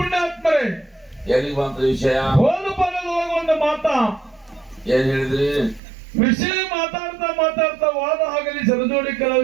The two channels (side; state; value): left; drops out; at 5.8 s